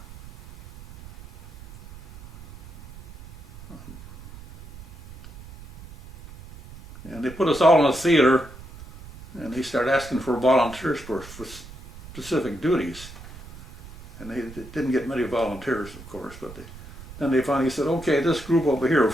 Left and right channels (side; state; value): right; noise; rumble, 17 dB below the sound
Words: And they put us all in a theater, and they started asking for volunteers for specific duties. And they didn't get many volunteers, of course, but then they finally said, okay, this group over here of